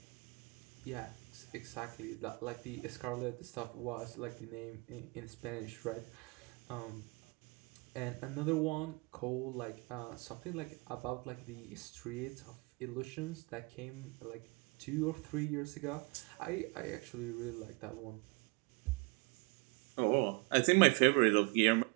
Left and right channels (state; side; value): quieter; left; 29.5 dB